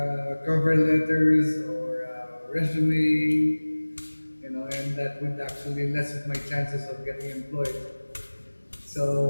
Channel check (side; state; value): both; inverted; correlation -1.00